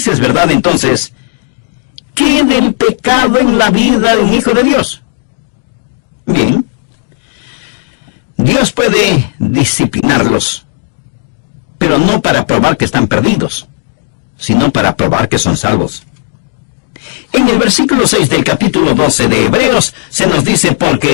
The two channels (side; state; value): right; silent; 63 dB below the other